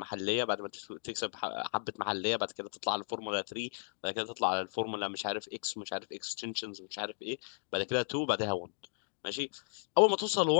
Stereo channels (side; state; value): right; silent; digital silence